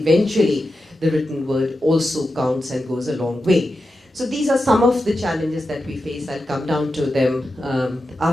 the written word also counts and goes a long way. So these are some of the challenges that we face. I'll come down to them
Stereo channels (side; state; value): both; normal; correlation 0.90